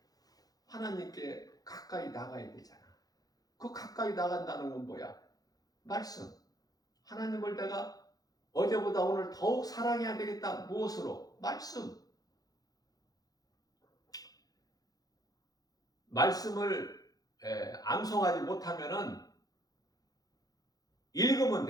하나님께 가까이 나가야 되잖아. 그 가까이 나간다는 건 뭐야? 말씀. 하나님을 내가 어제보다 오늘 더욱 사랑해야 되겠다. 무엇으로? 말씀. 말씀을 암송하지 못하면은 읽으면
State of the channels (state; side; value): late; right; 0.18 ms